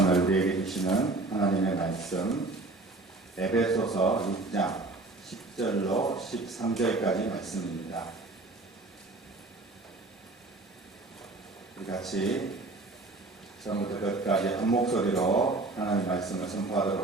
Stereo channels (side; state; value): left; quieter; 3.2 dB